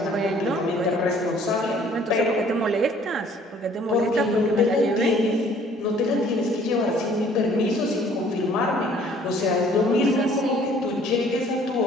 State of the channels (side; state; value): both; normal; correlation 0.57